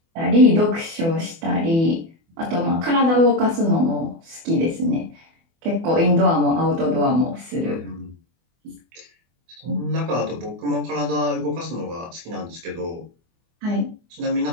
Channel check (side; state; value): left; late; 24 ms